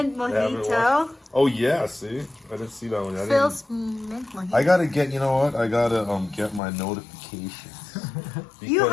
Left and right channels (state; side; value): drops out; right; at 6.6 s